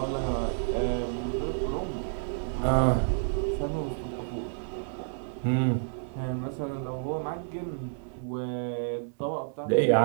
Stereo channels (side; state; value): left; silent; digital silence